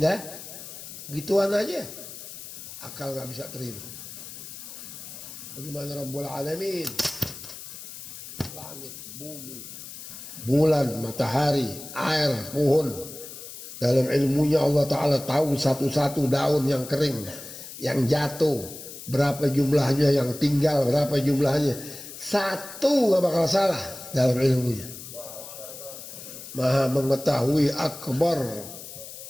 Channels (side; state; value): left; noise; hiss, 12 dB below the sound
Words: gituan aja. Akal nggak bisa terima. Bagaimana Rabbul Alamin, langit, bumi, bulan, matahari, air, pohon. Dalam ilmunya Allah Ta'ala tahu satu-satu daun yang kering, yang jatuh, berapa jumlahnya, yang tinggal berapa jumlahnya. Satu gak bakal salah dalam ilmunya. Maha mengetahui akbar.